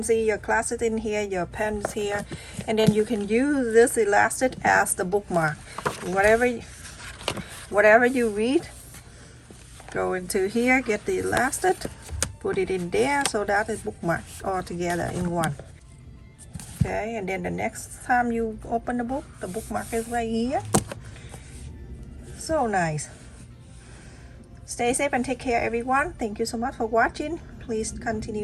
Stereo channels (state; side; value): identical; both; correlation 1.00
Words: see your classes in here, your pens here, and then you can use this elastic as the bookmark. Whatever you read, go into here, get the elastic, put it in there, so that is bookmarked all together in one. Okay, and then the next time you open the book, the bookmark is right here. So nice. Stay safe and take care, everyone. Thank you so much for watching. Please